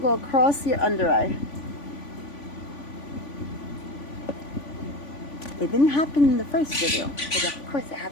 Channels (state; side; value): late; right; 3.5 ms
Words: across your under eye. It didn't happen in the first video, but of course it